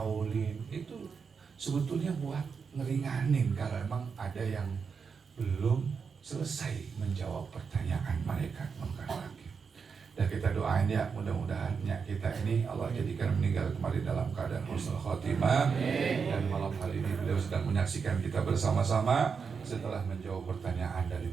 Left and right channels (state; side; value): quieter; left; 5.8 dB